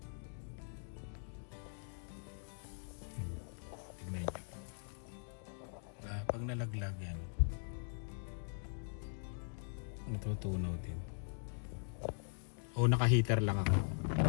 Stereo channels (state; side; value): silent; right; digital silence